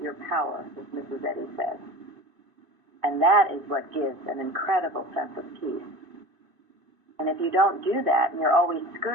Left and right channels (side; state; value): left; late; 2.5 ms